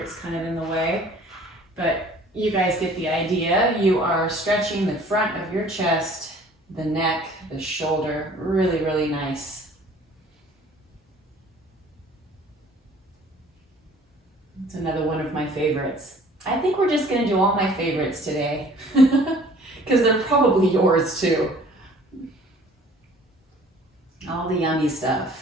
It's kind of in the way. But you guys get the idea. You are stretching the front of your chest, the neck, the shoulder. Really, really nice. It's another one of my favorites. I think we're just going to do all my favorites today because they're probably yours too. All the yummy stuff.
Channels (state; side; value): normal; both; correlation 0.52